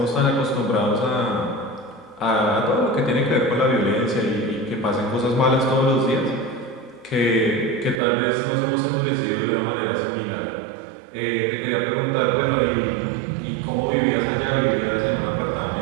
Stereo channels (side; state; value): left; drops out; at 8.0 s